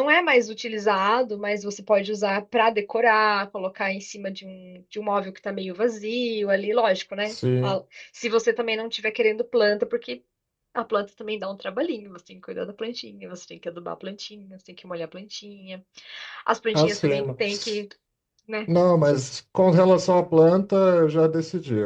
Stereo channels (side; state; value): both; identical; correlation 1.00